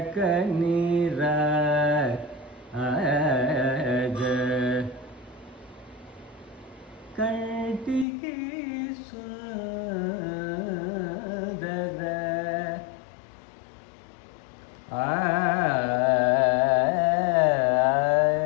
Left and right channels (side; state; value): right; drops out; at 8.1 s